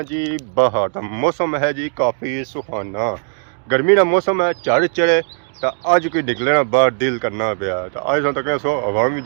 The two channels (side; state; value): left; silent; 56 dB below the other